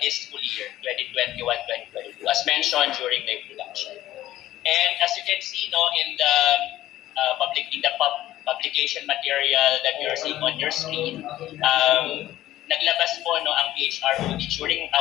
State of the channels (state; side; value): quieter; right; 14.4 dB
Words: this school year, 2021-2022, as mentioned during the introduction. And as you can see, in the publication material that you're seeing on your screen, naglabas po ang PHROD during